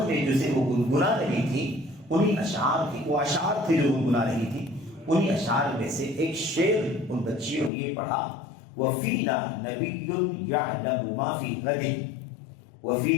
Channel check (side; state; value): right; drops out; at 7.7 s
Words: میں جسے وہ گنگنا رہی تھی، انہیں اشعار تھی، وہ اشعار تھے جو گنگنا رہی تھی، انہیں اشعار میں سے ایک شعر ان بچیوں نے یہ پڑھا، وَفِينَا نَبِيٌّ يَعْلَمُ مَا فِي غَدٍ،